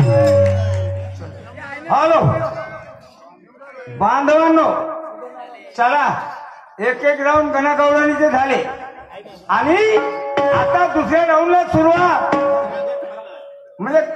हॅलो बांधवांनो, चला एक एक राऊंड गणागौरवानीचे झाले आणि आता दुसऱ्या राऊंडला सुरुवात. म्हणजे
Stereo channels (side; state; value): both; identical; correlation 1.00